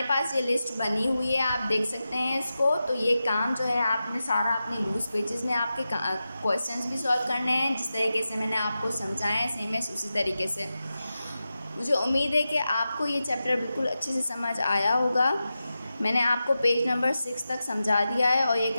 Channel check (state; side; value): inverted; both; correlation -0.92